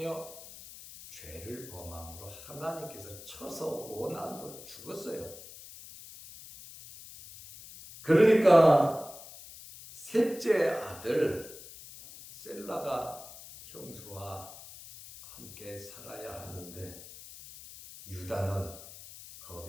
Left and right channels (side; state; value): left; noise; hiss, 16 dB below the sound